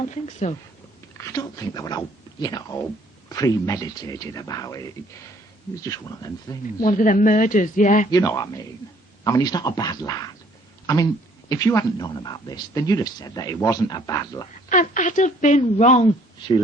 think so? I don't think they were all, all premeditated about it. It was just one of them things. One of them murders, yeah. You know what I mean. I mean, he's not a bad lad. I mean, if you hadn't known about this, then you'd have said that he wasn't a bad lad. And I'd have been wrong. She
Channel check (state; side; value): normal; both; correlation 0.60